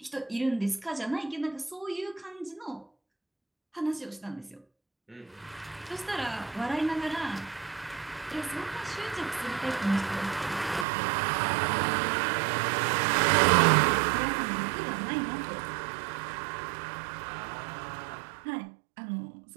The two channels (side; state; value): left; drops out; at 10.9 s